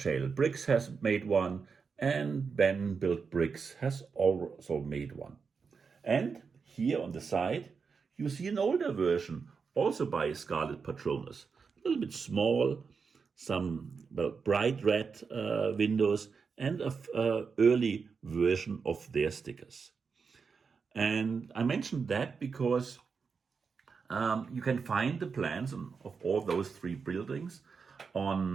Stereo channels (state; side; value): quieter; left; 5.4 dB